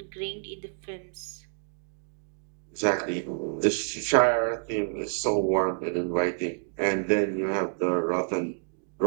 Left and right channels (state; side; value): silent; left; digital silence